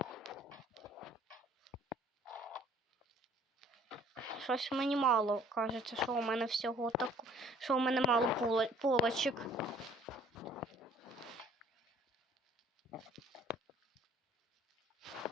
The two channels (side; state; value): both; normal; correlation 0.56